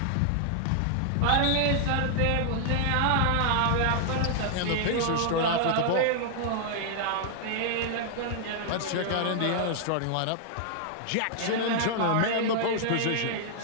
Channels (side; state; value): both; different; correlation 0.00